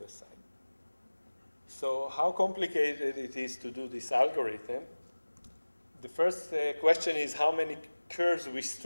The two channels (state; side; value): inverted; both; correlation -1.00